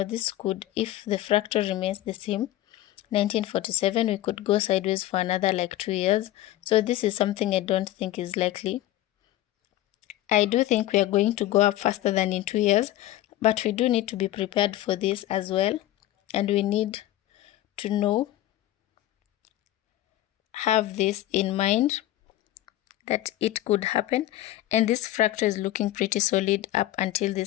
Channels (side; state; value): right; quieter; 14.6 dB